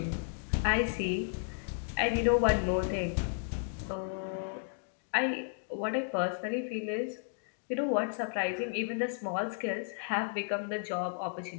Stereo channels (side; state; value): right; silent; digital silence